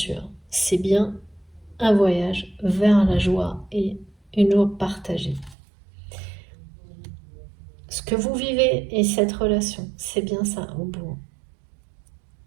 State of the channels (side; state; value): left; drops out; at 5.6 s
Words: C'est bien un voyage vers la joie et une joie partagée. Ce que vous vivez et cette relation, c'est bien ça au bout.